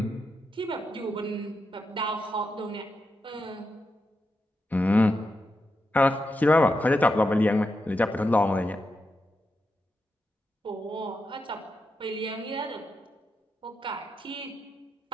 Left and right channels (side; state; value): both; normal; correlation 0.86